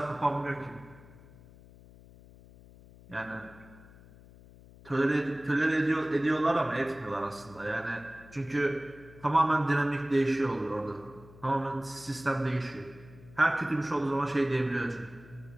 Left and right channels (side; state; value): left; noise; hum, 22 dB below the sound